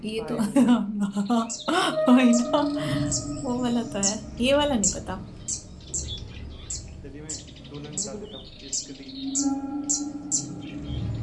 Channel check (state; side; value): identical; both; correlation 1.00